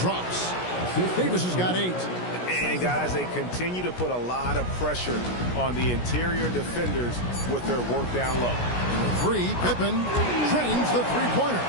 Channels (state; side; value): late; right; 17 ms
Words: Davis has got 8. And guys, they continue to put a lot of pressure on the interior defenders with their work down low. 3, Pippen trains the three-pointer.